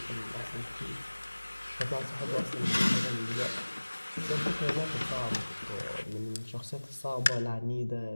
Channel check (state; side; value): inverted; both; correlation -1.00